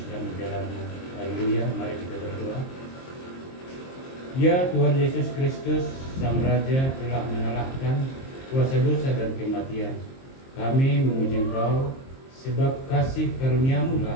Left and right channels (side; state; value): right; late; 23 ms